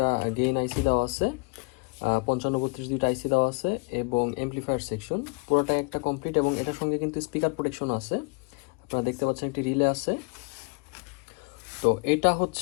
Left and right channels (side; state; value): right; quieter; 33.0 dB